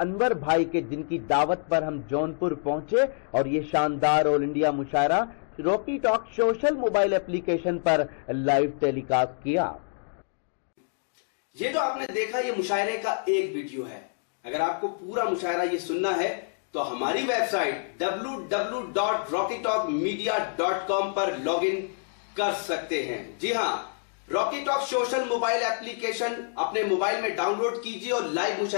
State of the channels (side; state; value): right; silent; digital silence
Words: भाई के, जिनकी दावत पर हम जौनपुर पहुंचे और ये शानदार all India mushaira Rocky talk social mobile application पर लाइव टेलीकास्ट किया। ये जो आपने देखा ये मुशायरे का एक वीडियो है। अगर आपको पूरा मुशायरा ये सुनना है तो हमारी वेबसाइट www.rockytalkmedia.com पर लॉगिन कर सकते हैं। जी हां, Rocky talk social mobile application अपने मोबाइल में डाउनलोड कीजिए और लाइव